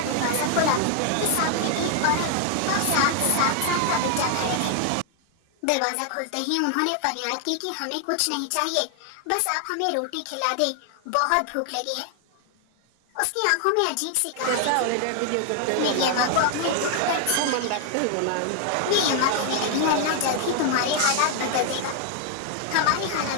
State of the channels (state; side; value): different; both; correlation 0.00